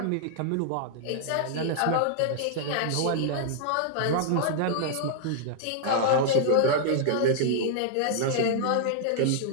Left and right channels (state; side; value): different; both; correlation -0.01